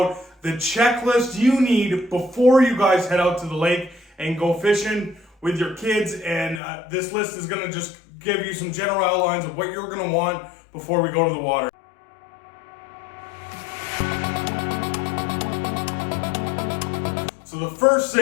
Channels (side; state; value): right; drops out; at 6.6 s